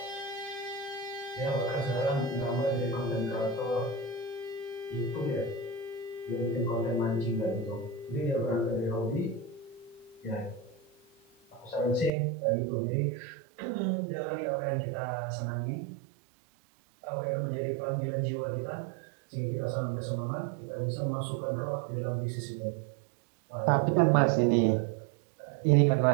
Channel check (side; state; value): left; drops out; at 12.1 s